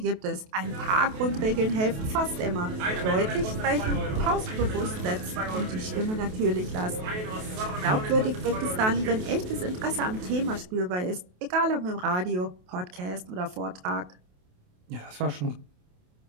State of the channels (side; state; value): left; late; 28 ms